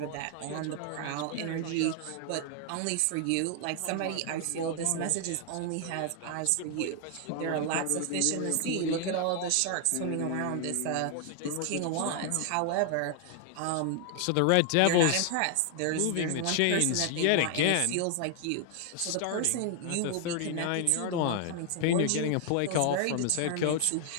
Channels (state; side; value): different; both; correlation 0.00